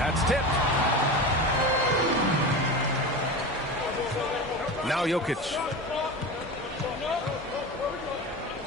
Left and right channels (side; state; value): both; normal; correlation 0.27